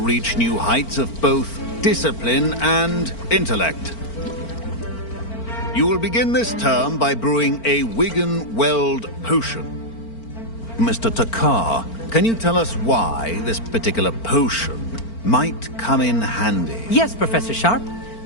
new heights of both discipline and intellect. You will begin this term by brewing a Wigan-Weld potion. Mr. Takar, can you tell us why this particular potion might come in handy? Yes, Professor Sharp.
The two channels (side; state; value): right; late; 4.4 ms